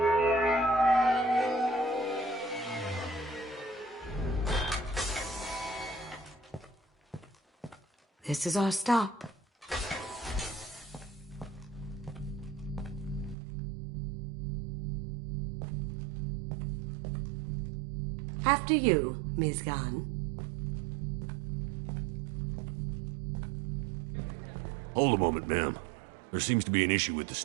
This is our stop. After you, Ms. Gunn. Hold a moment, ma'am. There seems to be an issue with the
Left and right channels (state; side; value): drops out; left; at 13.4 s